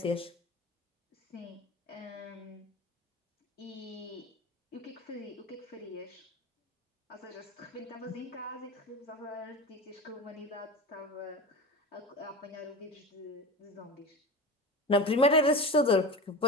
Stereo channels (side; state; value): both; normal; correlation 0.29